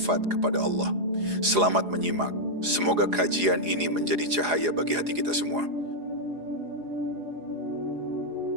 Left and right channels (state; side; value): late; left; 4.8 ms